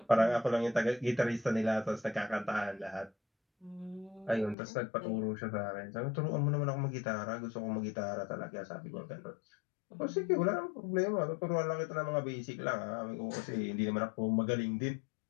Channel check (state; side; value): drops out; right; at 4.5 s